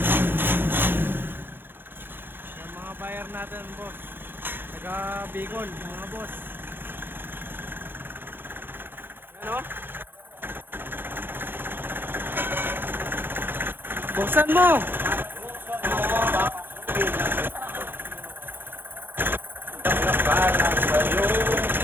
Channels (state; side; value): late; left; 0.10 ms